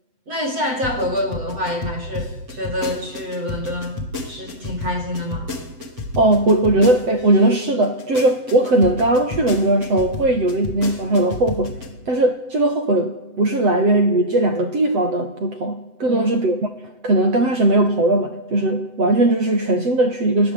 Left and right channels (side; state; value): left; late; 7.9 ms